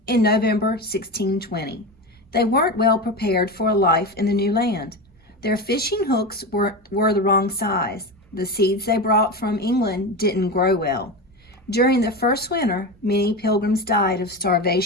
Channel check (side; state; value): both; normal; correlation 0.22